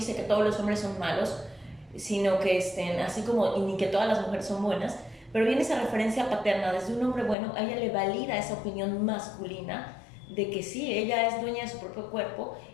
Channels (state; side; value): drops out; right; at 7.4 s